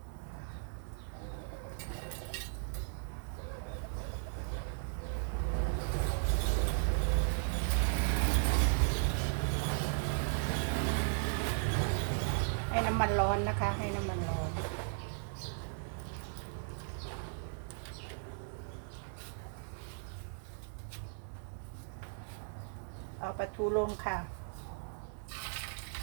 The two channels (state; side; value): silent; left; digital silence